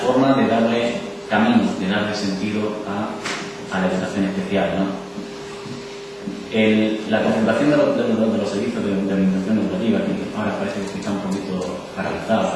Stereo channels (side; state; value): both; identical; correlation 1.00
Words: de darle camino, de darle sentido a la educación especial, ¿no? La concentración de los servicios de orientación educativa, que ahora parece que está un poquito